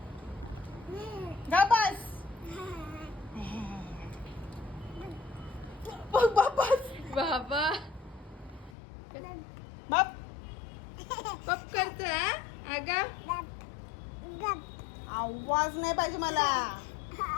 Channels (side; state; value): right; drops out; at 8.7 s